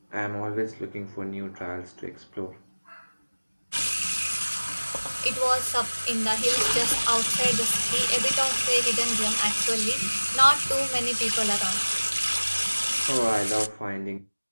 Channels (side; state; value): both; inverted; correlation -1.00